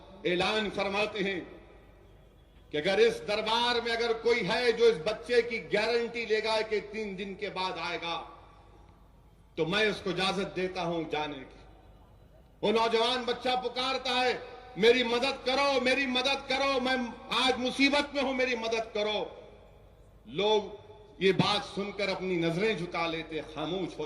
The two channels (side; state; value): both; identical; correlation 1.00